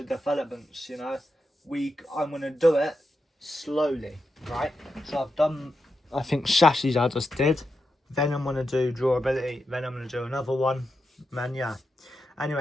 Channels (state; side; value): normal; both; correlation 0.87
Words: developments, you know. I'm going to do it slowly, right? So I've done, I think, chassis I just did. Then I'm going to do durability. Then I'm going to do another one. Man, yeah.